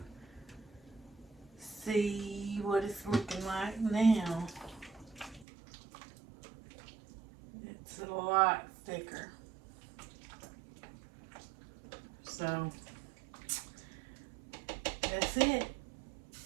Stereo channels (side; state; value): left; drops out; at 5.5 s